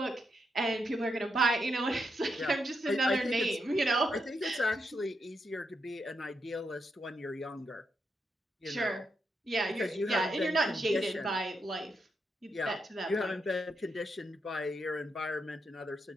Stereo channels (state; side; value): normal; both; correlation 0.82